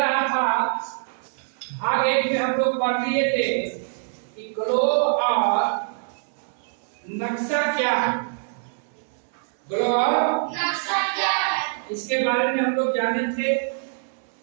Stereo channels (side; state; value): left; silent; digital silence